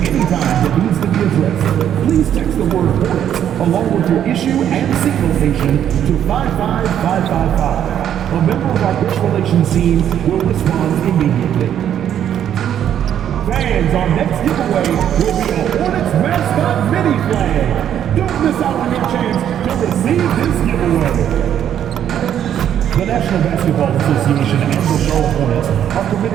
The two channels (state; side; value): quieter; left; 9.9 dB